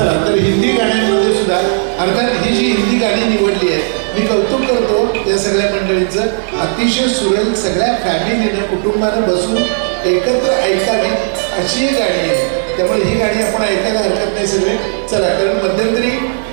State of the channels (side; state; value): left; silent; digital silence